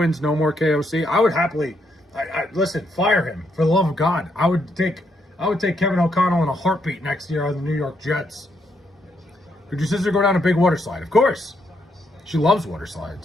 no more KOC, I would happily, listen, fire him for the love of God. I would take Kevin O'Connell in a heartbeat next year on the New York Jets. Could your sister go down a big water slide? Of course. She loves water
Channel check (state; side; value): normal; both; correlation 0.76